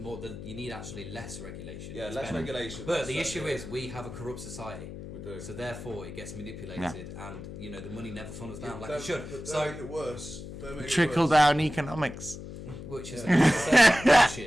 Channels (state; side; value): noise; left; hum, 11 dB below the sound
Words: you need actually less regulation. Yeah, less regulation. But the issue is we have a corrupt society. We do. So therefore, it gets manipulated, and the money never funnels down like it should. Don't So make it worse. Trickle down economics. Which is